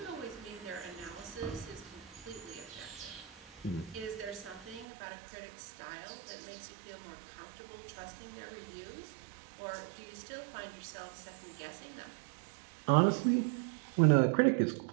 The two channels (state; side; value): drops out; left; at 4.9 s